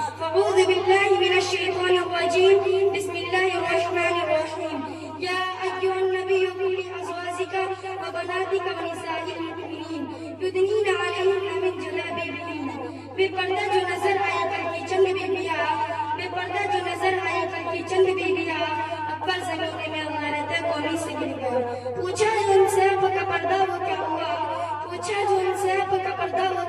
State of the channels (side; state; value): both; identical; correlation 1.00